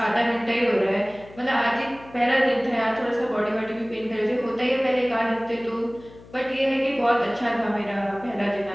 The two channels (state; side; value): noise; left; hum, 21 dB below the sound